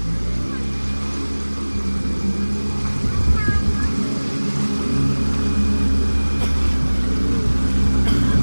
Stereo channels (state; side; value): inverted; both; correlation -1.00